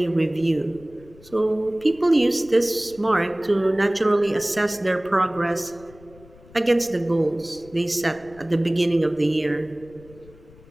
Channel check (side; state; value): left; noise; rumble, 24 dB below the sound